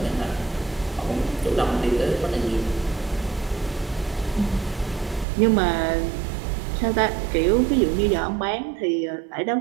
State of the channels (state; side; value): drops out; left; at 5.2 s